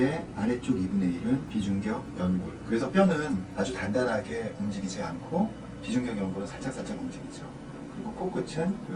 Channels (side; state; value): both; identical; correlation 1.00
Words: 아래쪽 2분의 1은 비중격 연골. 그래서 뼈는 아주 단단하게 움직이지 않고 비중격 연골은 살짝살짝 움직이죠. 그리고 코끝은